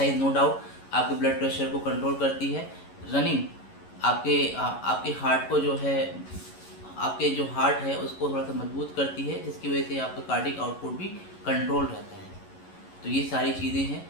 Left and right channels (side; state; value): right; late; 11 ms